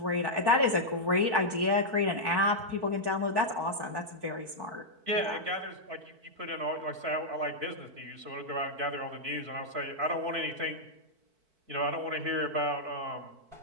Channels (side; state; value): left; late; 4.5 ms